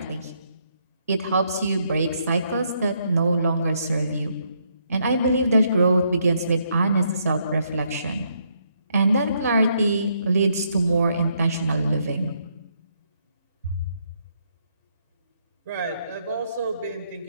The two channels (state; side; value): inverted; both; correlation -0.74